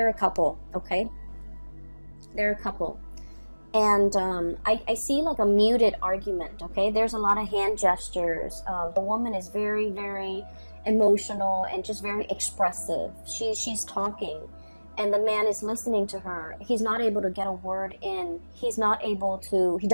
a couple. Okay, they're a couple, and I see like a muted argument. Okay, there's a lot of hand gestures. The woman is very, very emotional and just very expressive. She's talking, and the man is listening to her. He's not able to get a word in. He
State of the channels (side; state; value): both; inverted; correlation -1.00